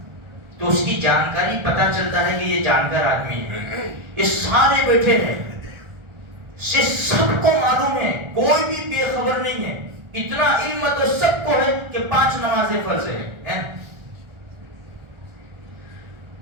تو اس کی جانکاری پتہ چلتا ہے کہ یہ جانکار آدمی ہے۔ یہ سارے بیٹھے ہیں، یہ سب کو معلوم ہے، کوئی بھی بے خبر نہیں ہے۔ اتنا علم تو سب کو ہے کہ 5 نمازیں فرض ہے۔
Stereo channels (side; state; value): left; late; 1.4 ms